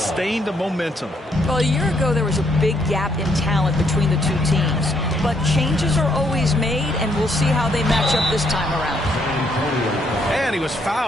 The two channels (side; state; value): both; normal; correlation 0.72